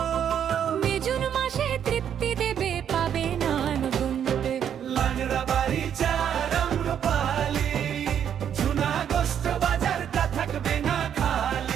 মেজুন মাসে তৃপ্তি দেবে, পাবে নান গুনতে। লাংড়া বাড়ি চার আম্রপালি, জুনা গোষ্ঠ বাজারটা থাকবে না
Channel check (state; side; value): quieter; left; 8.9 dB